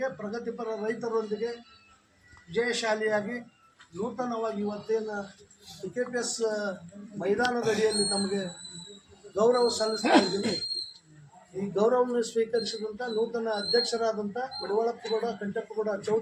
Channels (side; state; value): both; identical; correlation 1.00